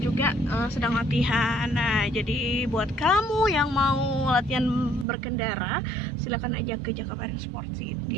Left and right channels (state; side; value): drops out; left; at 5.1 s